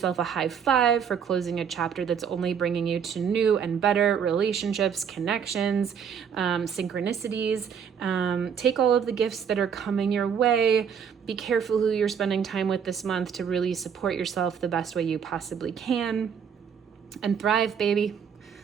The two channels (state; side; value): quieter; left; 7.4 dB